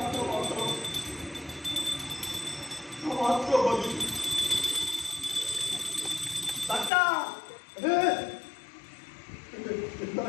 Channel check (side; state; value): right; drops out; at 6.9 s